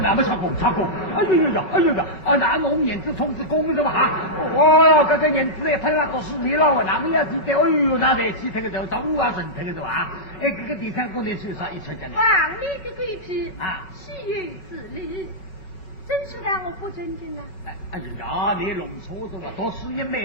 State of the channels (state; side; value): late; right; 4.9 ms